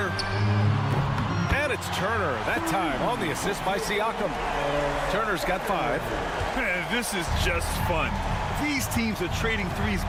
And it's Turner, that time on the assist by Siakam. Turner's got 5. This is just fun. These teams are trading threes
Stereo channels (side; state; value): both; identical; correlation 1.00